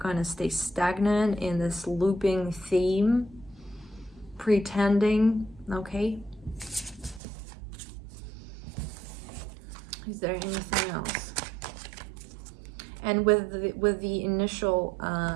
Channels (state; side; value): drops out; left; at 7.2 s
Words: of stay stagnant in this looping theme, pretending, okay? Is there anything else? And with the initial